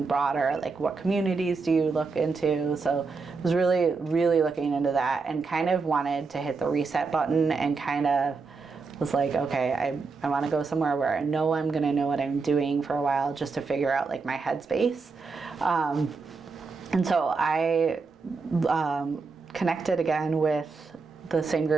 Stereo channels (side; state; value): left; quieter; 4.5 dB